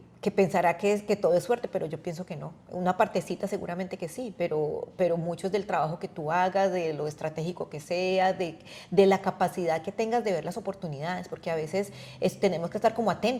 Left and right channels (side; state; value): both; identical; correlation 1.00